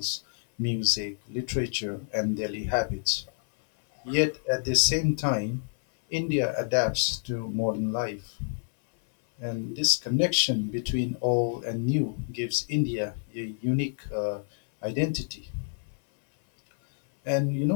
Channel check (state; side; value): silent; right; 59 dB below the other